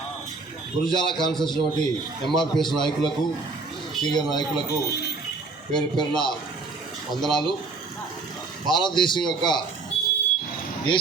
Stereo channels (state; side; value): quieter; left; 3.9 dB